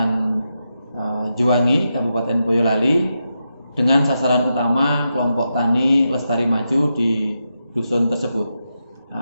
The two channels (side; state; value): both; inverted; correlation -0.86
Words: Juwangi, Kabupaten Boyolali, dengan sasaran utama kelompok tani Lestari Maju di dusun tersebut.